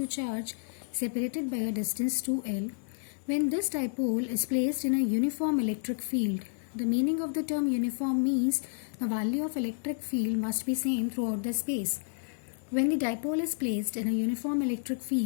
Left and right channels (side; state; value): right; silent; digital silence